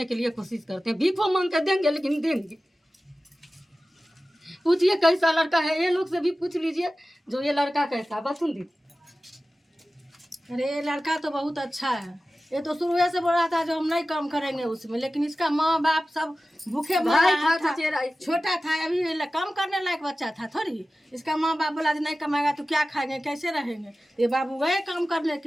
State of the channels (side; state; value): both; normal; correlation 0.95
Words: के लिए कोशिश करते हैं। भीखो मांग के देंगे, लेकिन देंगे। पूछिए कैसा लड़का है, ये लोग से भी पूछ लीजिए जो ये लड़का कैसा। बसुंदी, अरे ये लड़का तो बहुत अच्छा है, ये तो शुरू से बोल रहा था जो हम नहीं काम करेंगे उसमें, लेकिन इसका माँ बाप सब भूखे भाई था, था, छोटा था, अभी ये काम करने लायक बच्चा था थोड़ी। इसका माँ बाप बोला नहीं कमाएगा तो क्या खाएंगे, कैसे रहेंगे। ये बाबू गए काम करने